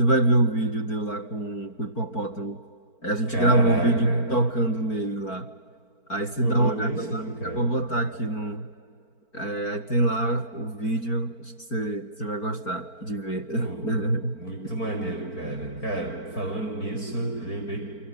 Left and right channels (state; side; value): late; right; 4.5 ms